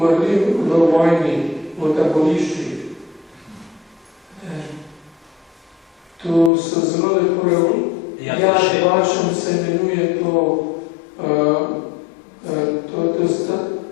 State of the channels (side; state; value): right; drops out; at 6.5 s